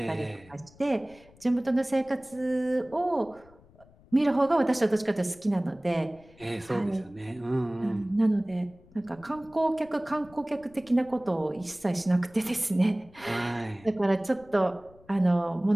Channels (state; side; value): noise; left; rumble, 26 dB below the sound